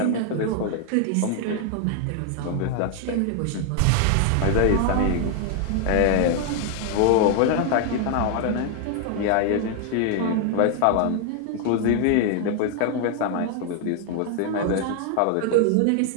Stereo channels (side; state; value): both; different; correlation 0.00